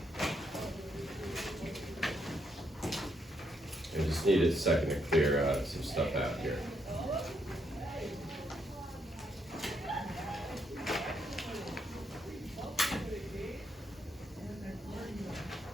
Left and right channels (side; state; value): both; normal; correlation 0.76